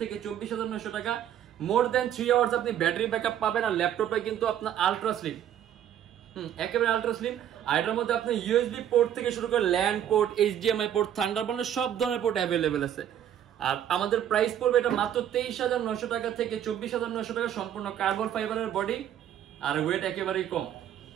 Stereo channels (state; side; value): quieter; left; 10.4 dB